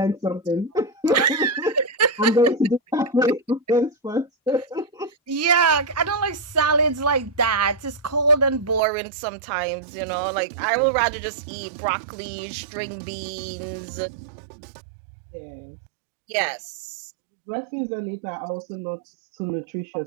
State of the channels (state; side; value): drops out; left; at 8.8 s